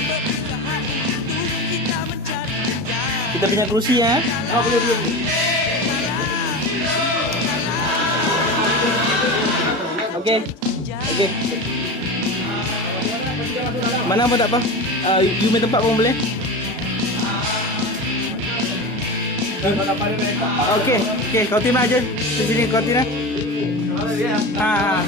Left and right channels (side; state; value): both; normal; correlation 0.26